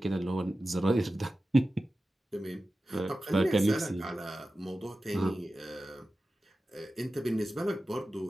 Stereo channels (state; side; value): normal; both; correlation 0.94